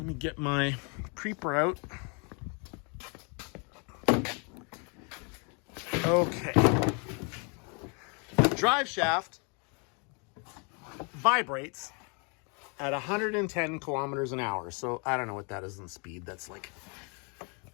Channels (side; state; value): right; quieter; 34.9 dB